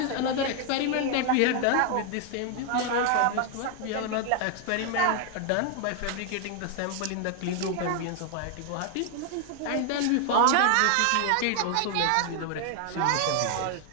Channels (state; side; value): different; both; correlation 0.01